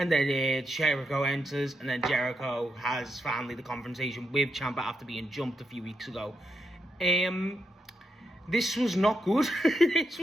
then Jericho enters, and then Jericho has finally the confrontation with Ciampa after being jumped a few weeks ago. This was not good. This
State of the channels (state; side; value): normal; both; correlation 0.83